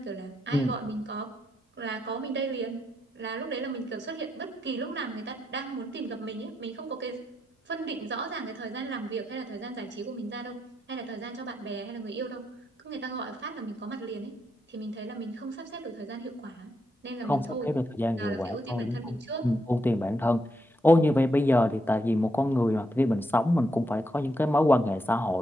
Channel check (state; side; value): normal; both; correlation 0.81